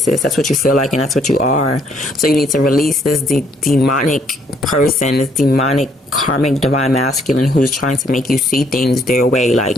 That's what you feel like, and that's what you are. So you need to release this demonic person, this demonic karmic divine masculine who's trying to make you see things their way. Like,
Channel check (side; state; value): both; normal; correlation 0.68